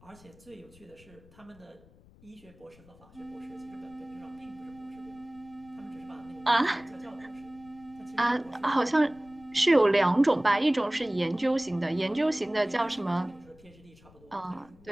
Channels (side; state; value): left; noise; rumble, 26 dB below the sound